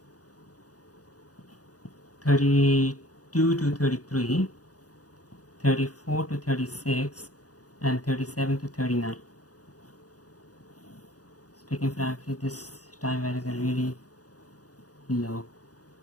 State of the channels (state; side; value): late; right; 0.67 ms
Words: 32 to 33, 34 to 36, and 37 to 39. Speaking frankly, this time values are really low